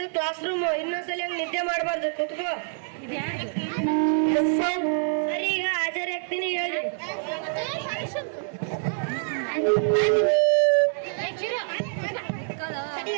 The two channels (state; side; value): silent; left; 61 dB below the other